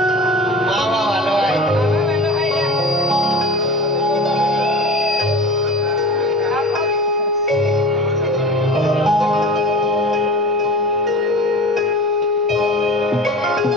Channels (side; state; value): both; normal; correlation 0.36